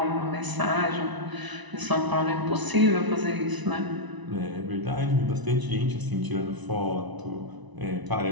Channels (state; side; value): late; left; 1.0 ms